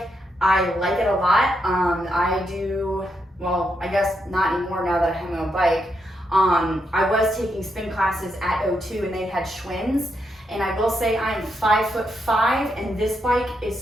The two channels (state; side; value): normal; both; correlation 0.81